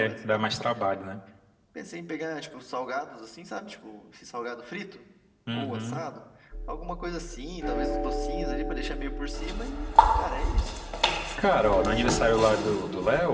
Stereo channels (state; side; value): identical; both; correlation 1.00